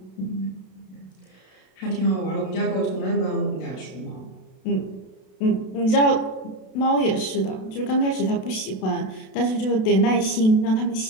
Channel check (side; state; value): right; late; 32 ms